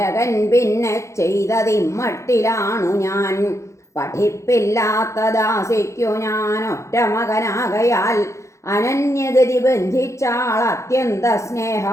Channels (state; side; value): late; right; 0.14 ms